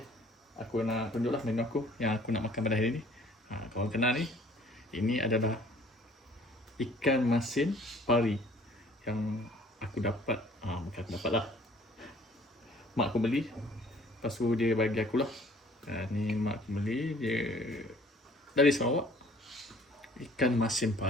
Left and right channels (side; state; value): both; normal; correlation 0.55